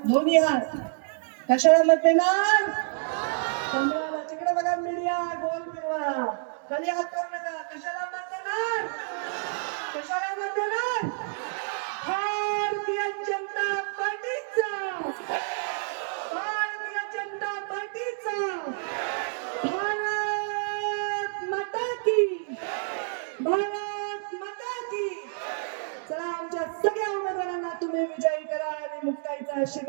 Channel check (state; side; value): silent; left; 59 dB below the other